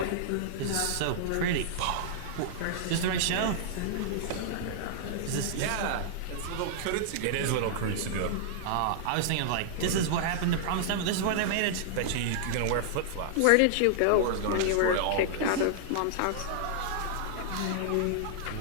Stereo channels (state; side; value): different; both; correlation -0.01